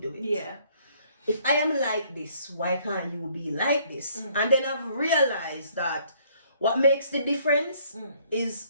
it? Yeah. If I am like this, why can't you be like this? And then I've realized that what makes the difference is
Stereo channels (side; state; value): both; inverted; correlation -0.63